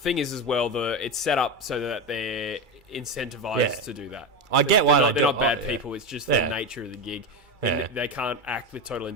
is as well, it's set up so that they're incentivized to do that. I get why they do it. They're not bad people, it's just the nature of the gig. They can't act with total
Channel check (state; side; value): late; left; 2.3 ms